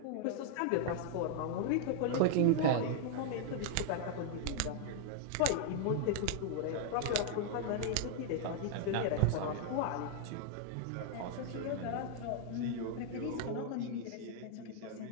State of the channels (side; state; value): both; different; correlation -0.01